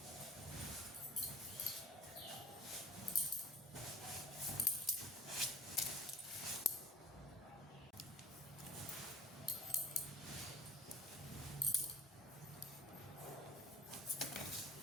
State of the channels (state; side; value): normal; both; correlation 0.46